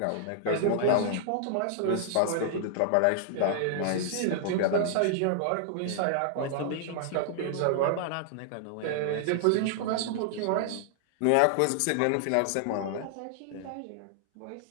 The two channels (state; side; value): different; both; correlation -0.01